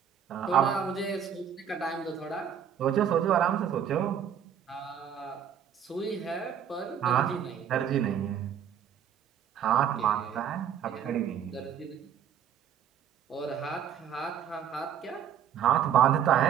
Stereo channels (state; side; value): quieter; left; 8.7 dB